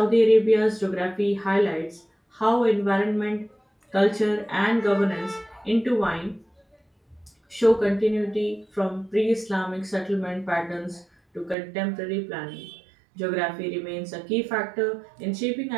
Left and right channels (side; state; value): left; drops out; at 11.6 s